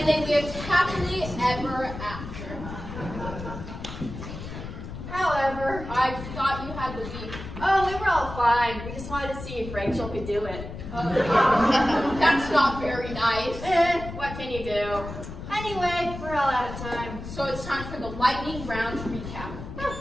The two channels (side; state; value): left; noise; rumble, 10 dB below the sound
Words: they lived happily ever after. However, I thought you had the beef. oh, we were all fine. We just wanted to see if Rachel could do it. That's not very nice. What can you do? Anyway, we're all out of time. So it's time for the lightning round recap.